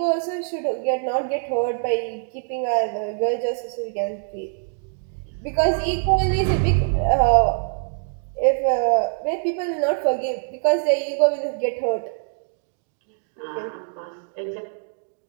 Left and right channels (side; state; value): left; silent; digital silence